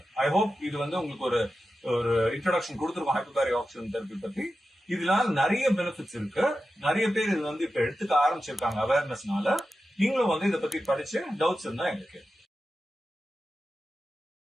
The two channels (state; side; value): normal; both; correlation 0.92